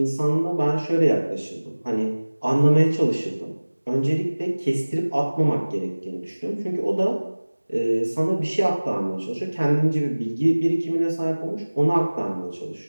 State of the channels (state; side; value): inverted; both; correlation -1.00